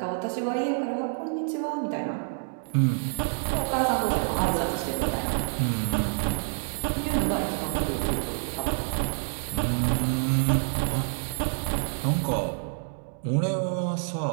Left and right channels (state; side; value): silent; left; digital silence